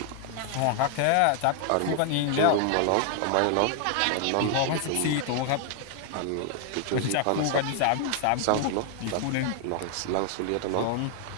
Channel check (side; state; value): both; different; correlation 0.00